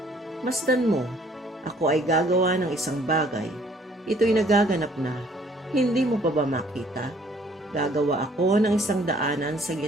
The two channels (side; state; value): both; normal; correlation 0.60